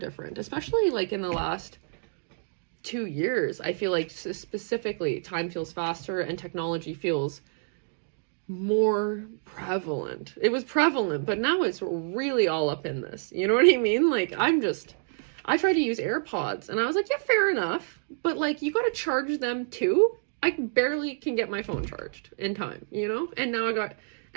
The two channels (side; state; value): left; silent; digital silence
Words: especially like in the last 2 years. I feel like specifically time feels faster and technology feels more prevalent. It was prevalent, but now it's really all up in this. You know what I mean? Like I tried to use AirPods and I was like, yeah, fair enough. But like you got to charge them too. I barely can get my phone charged in time, you know?